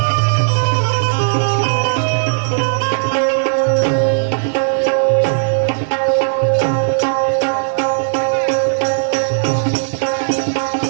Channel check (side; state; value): left; silent; digital silence